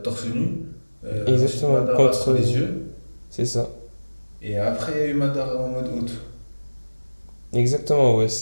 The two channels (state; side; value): inverted; both; correlation -1.00